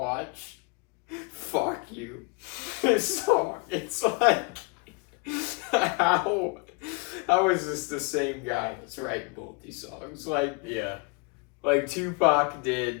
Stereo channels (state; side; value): quieter; right; 30.7 dB